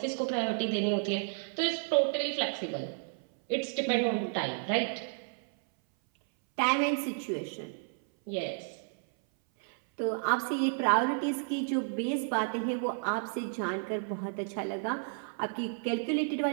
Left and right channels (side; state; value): left; silent; 57 dB below the other